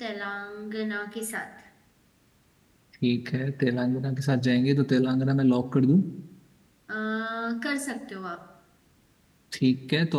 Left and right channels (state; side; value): identical; both; correlation 1.00